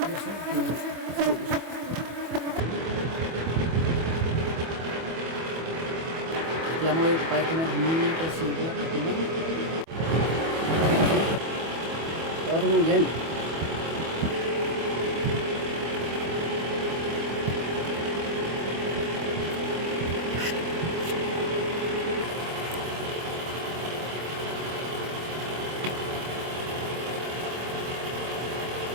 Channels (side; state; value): left; late; 25 ms